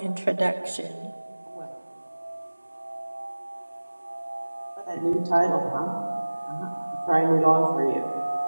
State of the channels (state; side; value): inverted; both; correlation -1.00